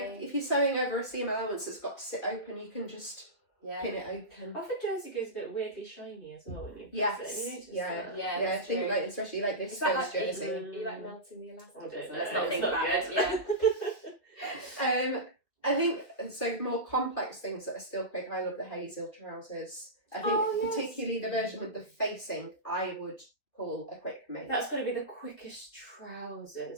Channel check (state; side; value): late; right; 2.8 ms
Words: if you're sewing over a seam allowance that's got to sit open, you can just pin it open. Often jersey goes a bit weirdly shiny as well when you press it. You notice that? Yeah. I think like especially like this like jersey. You like melting the elastic. Let's not think about it. Yeah. I think so. More complex things that are still quick. I love the Hazel trousers. I think particularly the version with the facing, I would call a quick make. That's got to be the quickest